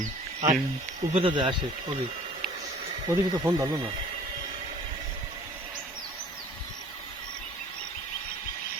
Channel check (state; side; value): normal; both; correlation 0.50